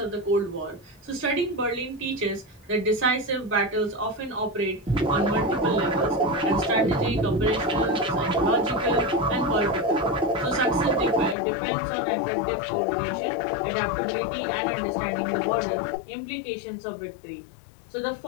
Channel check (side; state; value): right; drops out; at 11.4 s